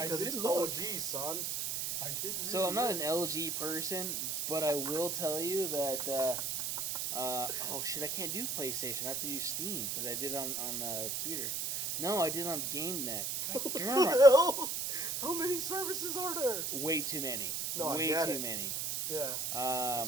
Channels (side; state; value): right; noise; hiss, 1 dB below the sound